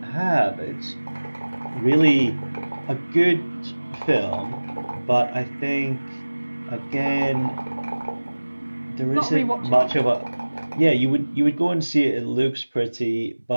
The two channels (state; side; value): inverted; both; correlation -1.00